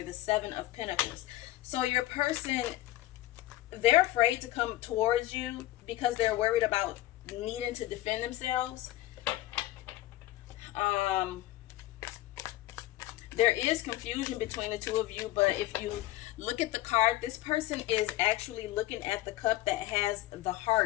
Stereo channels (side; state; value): right; quieter; 16.1 dB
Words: Seven of Pentacles. So your person, they're afraid to come towards you because they're worried about needing to defend themselves. There is confusion between the two of you, but if you look at the card, this person is actually looking at the cup that has the